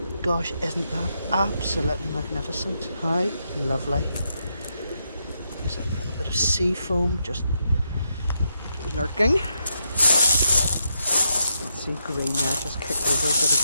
Gosh, isn't that absolutely magnificent? How lovely. There's a little bit of sea foam just lurking. Let's see, green there, just kicked over a bit of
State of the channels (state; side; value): inverted; both; correlation -0.82